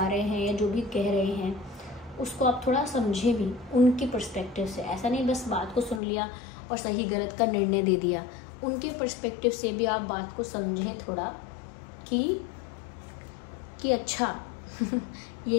रहे हैं या जो भी कह रहे हैं उसको आप थोड़ा समझे भी उनके पर्सपेक्टिव से। ऐसा नहीं बस बात को सुन लिया और सही गलत का निर्णय दे दिया, उनके पर्सपेक्टिव से भी आप बात को समझें थोड़ा कि अच्छा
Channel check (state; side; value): drops out; right; at 6.0 s